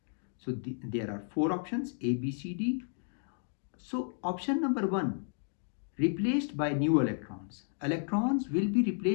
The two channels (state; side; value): silent; right; digital silence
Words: So there are 4 options, A, B, C, D. So option number 1, replaced by new electrons. Electrons will be